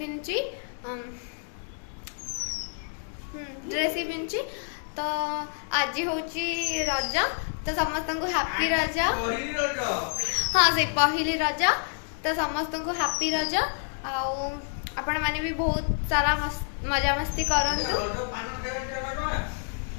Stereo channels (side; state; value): right; silent; 59 dB below the other